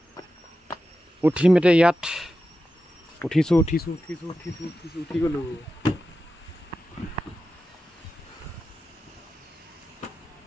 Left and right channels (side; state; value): both; normal; correlation 0.92